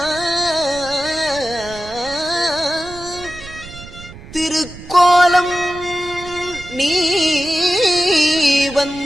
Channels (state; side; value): noise; right; rumble, 16 dB below the sound